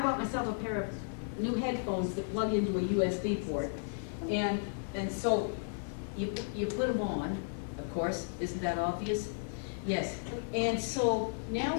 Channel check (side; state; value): right; silent; digital silence